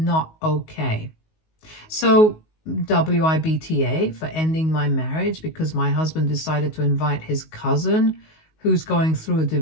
okay. So WIBTA for ending my marriage because my husband decided to invite his cousin who's going through a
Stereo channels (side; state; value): right; late; 19 ms